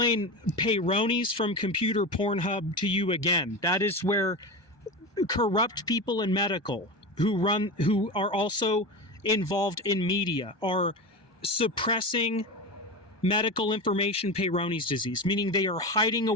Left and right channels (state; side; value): late; right; 1.2 ms